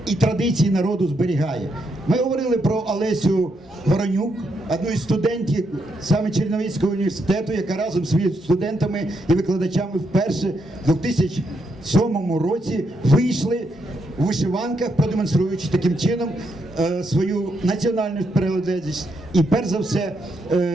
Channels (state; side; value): normal; both; correlation 0.79